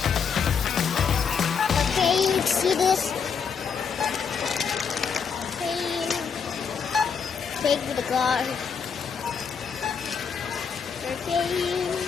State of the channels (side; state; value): right; quieter; 6.4 dB